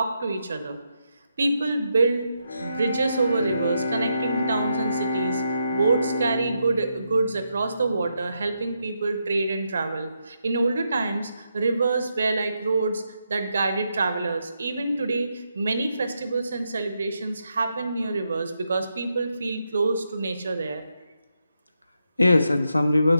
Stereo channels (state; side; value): inverted; both; correlation -0.83